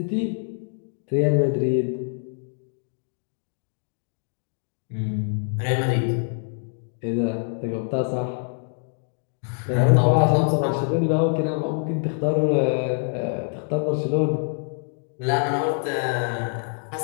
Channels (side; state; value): right; silent; 58 dB below the other